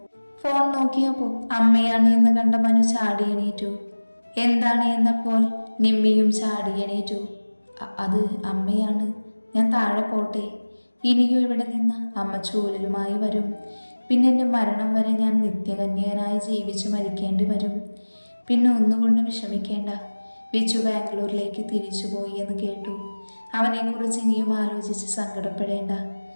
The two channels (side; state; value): both; inverted; correlation -1.00